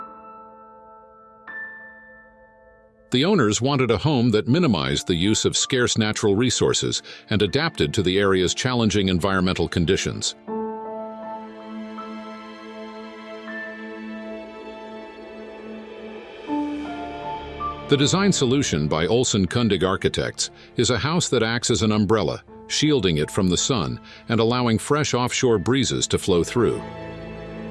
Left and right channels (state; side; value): identical; both; correlation 1.00